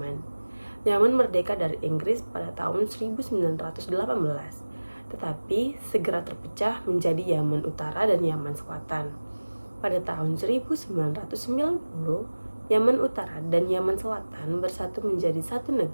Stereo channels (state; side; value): inverted; both; correlation -1.00